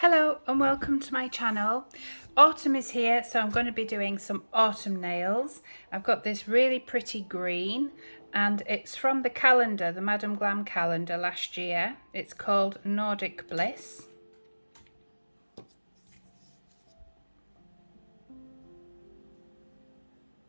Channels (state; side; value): inverted; both; correlation -1.00